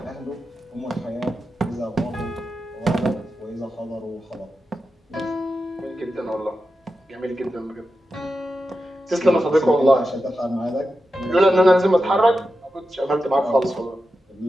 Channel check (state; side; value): normal; both; correlation 0.90